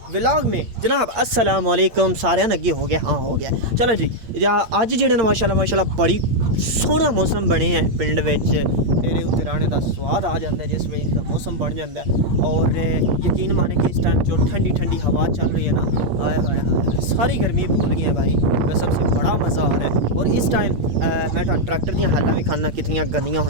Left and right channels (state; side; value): late; left; 8.6 ms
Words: व्लॉग में जनाब। अस्सलामुअलैकुम। सारे नगे हो गया? हाँ हो गया। चलो जी, अज जेह्ड़े न माशाल्लाह बड़ी सोहना मौसम बने हैं पिंड विच। मेरे उत्ते राने का स्वाद आ जाता है जिस वजह का मौसम बन जाता है। और यकीन माने कि इस टाइम जो ठंडी ठंडी हवा चल रही है ना, हाय हाय हाय, सारी गर्मी भूल गई है भाई। कसम से बड़ा मज़ा आ रहा है। और इस टाइम मैं ट्रैक्टर दी हालां भी खाना कितनी गंदियाँ